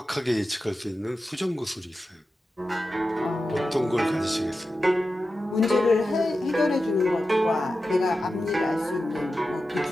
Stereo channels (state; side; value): normal; both; correlation 0.92